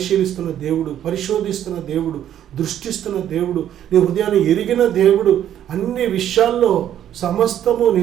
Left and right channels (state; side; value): quieter; left; 10.8 dB